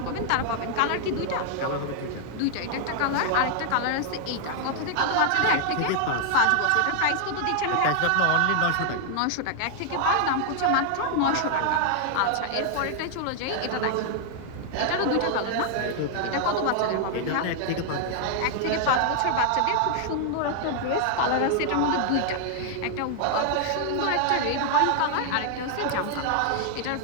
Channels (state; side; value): different; both; correlation 0.00